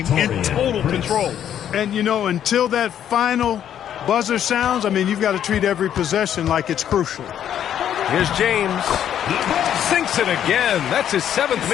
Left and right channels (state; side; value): quieter; right; 10.0 dB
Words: in total control. And, you know, until that final buzzer sounds, I mean, you've got to treat every possession like it's crucial. Here's James. Sinks it again. That's his 7th